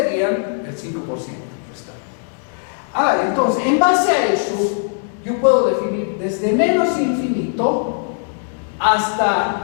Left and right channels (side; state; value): right; silent; digital silence